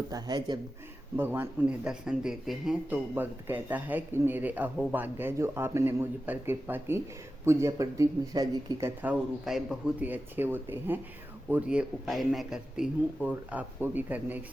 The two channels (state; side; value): normal; both; correlation 0.93